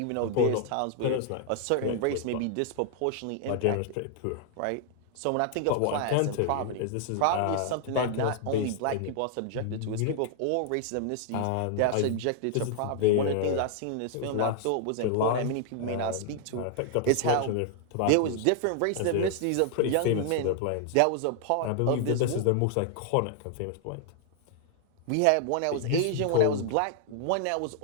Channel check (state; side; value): different; both; correlation 0.00